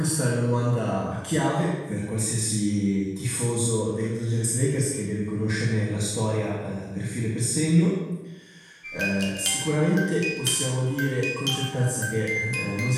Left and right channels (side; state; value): both; identical; correlation 1.00